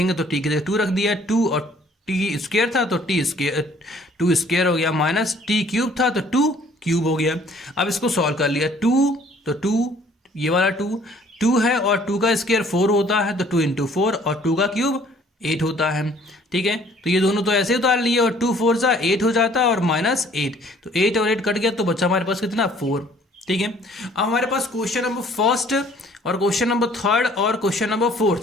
तो t की जगह 2 रख दिया, 2 और t² था तो t² हो गया, माइनस t³ था तो 2³ हो गया। अब इसको सॉल्व कर लिया, 2 तो 2, ये वाला 2 है और 2 का स्क्वायर 4 होता है, तो 2 इंटू 4 और 2 का क्यूब 8 होता है। ठीक है, तो ये दोनों तो ऐसे उतार लिए और 2 4 जा 8 हो जाता है और -8, तो 8 और 8 कट गया तो बचा हमारे पास कितना 4। ठीक है, अब हमारे पास क्वेश्चन नंबर फर्स्ट और क्वेश्चन नंबर थर्ड और क्वेश्चन नंबर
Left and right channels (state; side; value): normal; both; correlation 0.57